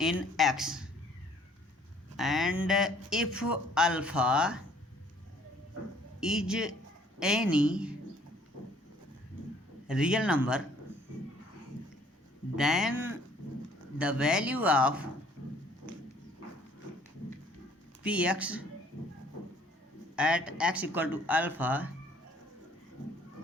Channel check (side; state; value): both; normal; correlation 0.59